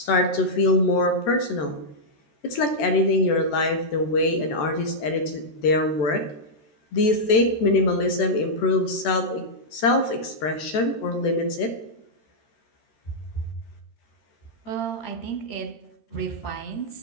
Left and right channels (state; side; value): late; right; 13 ms